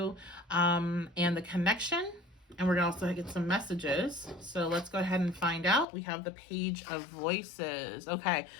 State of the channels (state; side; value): drops out; right; at 5.9 s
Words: and the connection. And we're going to also get some messages. So let's go ahead and find out. We have the Page of Voices. Okay,